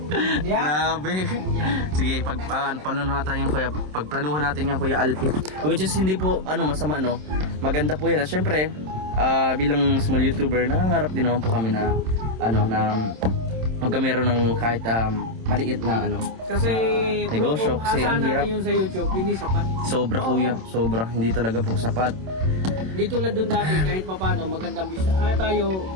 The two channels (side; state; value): left; late; 27 ms